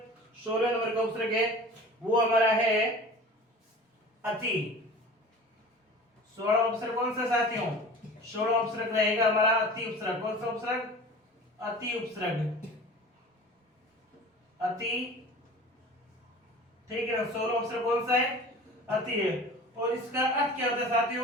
16 नंबर का उपसर्ग है, वो हमारा है अति। 16वां उपसर्ग कौन सा साथियों? 16वां उपसर्ग रहेगा हमारा अति उपसर्ग। कौन सा उपसर्ग? अति उपसर्ग। अति, ठीक है ना। 16वां उपसर्ग कौन सा है? अति है। और इसका अर्थ क्या होता है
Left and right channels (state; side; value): normal; both; correlation 0.40